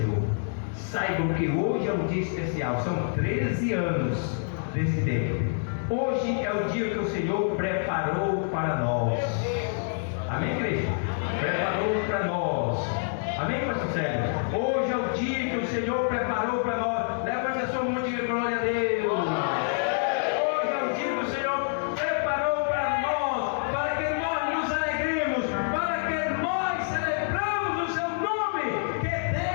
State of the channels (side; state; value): right; silent; 60 dB below the other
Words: saibam que hoje é um dia especial. São 13 anos desse tempo. Hoje é o dia que o Senhor preparou para nós. Amém, igreja? Preparou para nós. Amém, pastor Sérgio? Hoje é o dia que o Senhor preparou para nós. Levante a sua mão e diga glória a Deus. Hoje é o dia que o Senhor preparou para nós, para que nós nos alegremos, para que nós celebramos o seu nome. Que